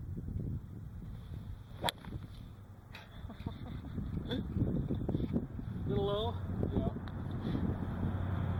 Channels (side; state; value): both; identical; correlation 1.00